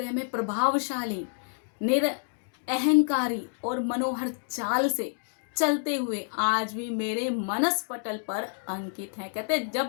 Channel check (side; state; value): right; silent; 59 dB below the other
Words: में प्रभावशाली, अहंकारी और मनोहर चाल से चलते हुए आज भी मेरे मनस पटल पर अंकित है। कहते हैं